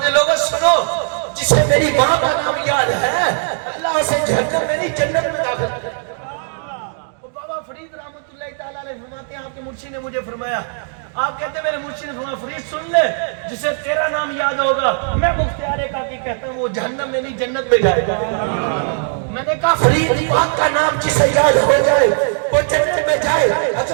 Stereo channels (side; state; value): left; silent; digital silence